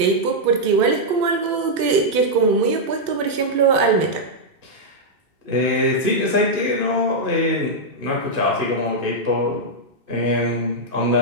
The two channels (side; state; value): left; late; 2.7 ms